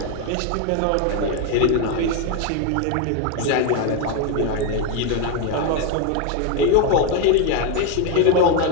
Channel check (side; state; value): both; different; correlation 0.01